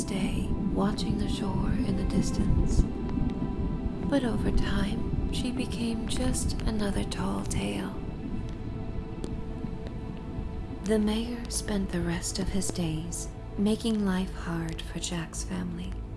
day, watching the shore in the distance. But over time, she became just another tall tale. The mayor spent the rest of his days making life hard for Jack's family.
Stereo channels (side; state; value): both; identical; correlation 1.00